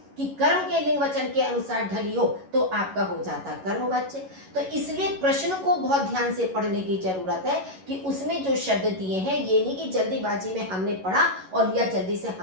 कि कर्म के लिंग वचन के अनुसार ढली हो, तो आपका हो जाता कर्मवाच्य। तो इसलिए प्रश्न को बहुत ध्यान से पढ़ने की जरूरत है कि उसमें जो शब्द दिए हैं, ये नहीं कि जल्दीबाजी में हमने पढ़ा और या जल्दी से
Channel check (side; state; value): left; late; 11 ms